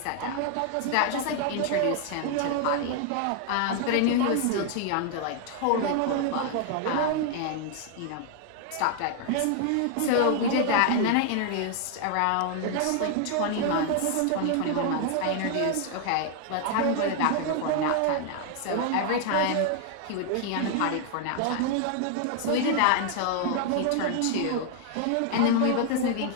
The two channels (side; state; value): both; different; correlation 0.00